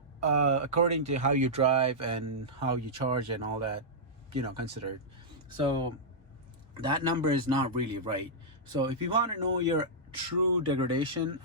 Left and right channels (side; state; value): both; normal; correlation -0.11